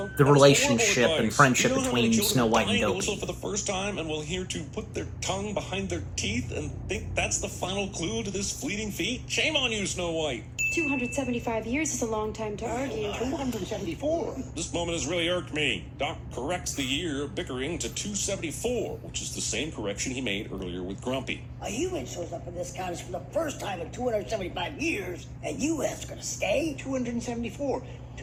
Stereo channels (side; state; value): both; identical; correlation 1.00